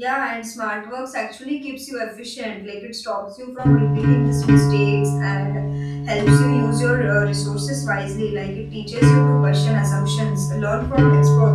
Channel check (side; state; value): both; identical; correlation 1.00